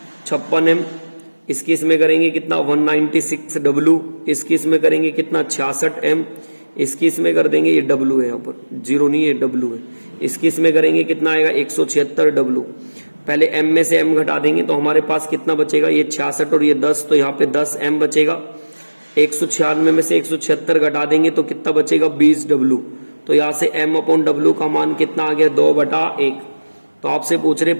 56 M, इसकी इसमें करेंगे कितना 196 W, इसकी इसमें करेंगे कितना 66 M, इसकी इसमें कर देंगे, ये W है यहाँ पर 0 नहीं है W है, इसकी इसमें करेंगे कितना आएगा 176 W। पहले M में से M घटा देंगे तो हमारे पास कितना बचेगा, ये 66 और ये 10, तो यहाँ पे 10 M बचेगा। 196 में से 176 घटा देंगे तो कितना बचेगा 20 W। तो यहाँ से M/W का मान कितना आ गया 2/1। तो आपसे पूछ रहे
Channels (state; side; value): inverted; both; correlation -1.00